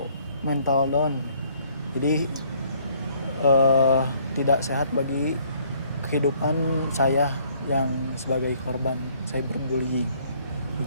mental down. Jadi tidak sehat bagi kehidupan saya yang sebagai korban cyberbullying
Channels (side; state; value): both; inverted; correlation -0.63